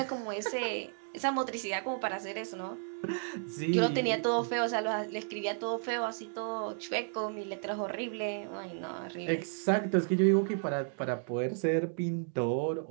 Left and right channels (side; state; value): left; silent; digital silence